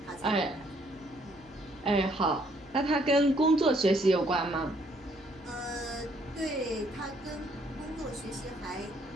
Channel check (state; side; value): noise; left; hum, 26 dB below the sound